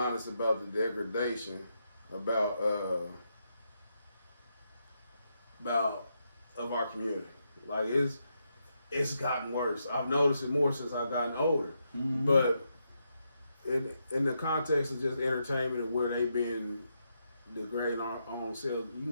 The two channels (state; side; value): inverted; both; correlation -0.82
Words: about the degradation of our community. Like, it's gotten worse. I've noticed it more since I've gotten older. Mm-hmm. But in the context of just entertainment and where they've been degrading our own selves, you